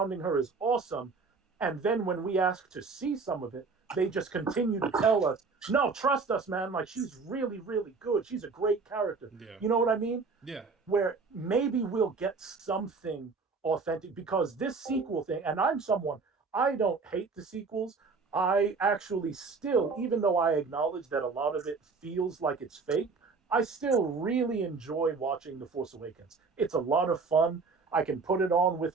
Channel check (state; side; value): quieter; left; 4.5 dB